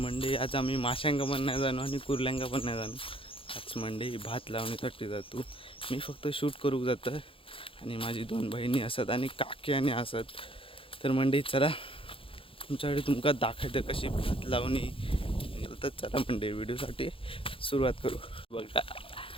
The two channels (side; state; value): right; late; 0.26 ms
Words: आज आम्ही माशांका पण नाही जाणू आणि कुर्ल्यांका पण नाही जाणू. आज मंडळी भात लावण्यासाठी जातो. मी फक्त शूट करू जातं आणि माझी 2 बहिणी असत आणि काकी आणि असत. तर मंडळी चला तुमच्याकडे तुमका दाखवतं कशी भात लावणी. तर चला मंडळी व्हिडिओसाठी सुरुवात करू. बघा